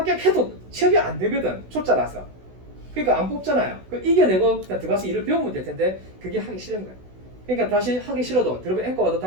취업이 안 되거든. 초짜라서. 그러니까 안 뽑잖아요. 이겨내고 그냥 들어가서 일을 배우면 될 텐데 그게 하기 싫은 거예요. 그러니까 다시 하기 싫어도 들어가 앵커 와도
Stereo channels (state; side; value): late; left; 16 ms